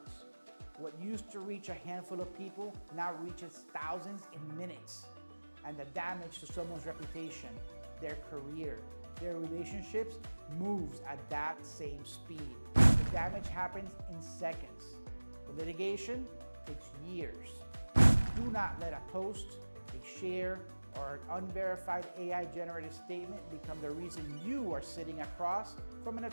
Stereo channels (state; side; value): inverted; both; correlation -1.00